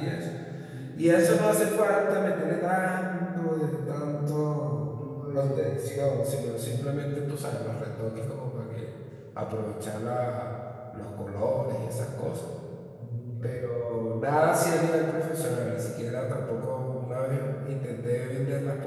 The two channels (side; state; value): both; identical; correlation 1.00